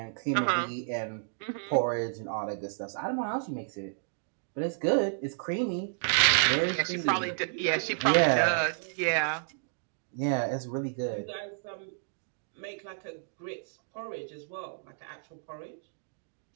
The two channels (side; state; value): left; silent; digital silence